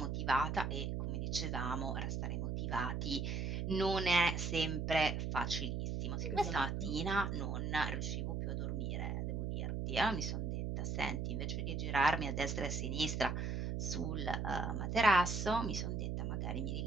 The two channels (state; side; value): noise; right; hum, 1 dB below the sound